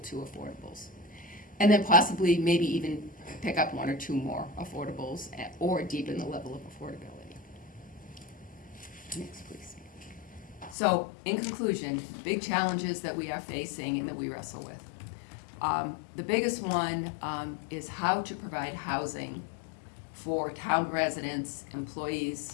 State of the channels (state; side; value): drops out; right; at 10.8 s